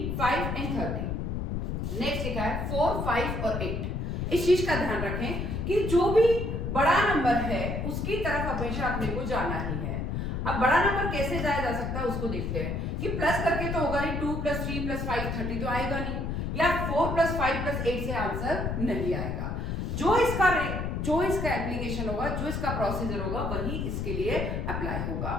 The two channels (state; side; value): noise; left; rumble, 2 dB below the sound